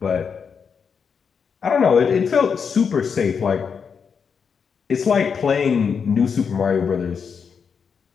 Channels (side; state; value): right; quieter; 6.3 dB